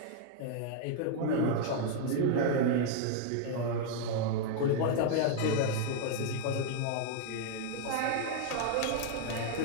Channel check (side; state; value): both; different; correlation 0.00